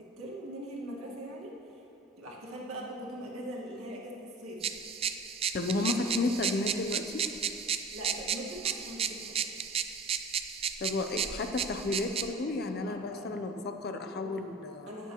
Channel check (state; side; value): normal; both; correlation 0.39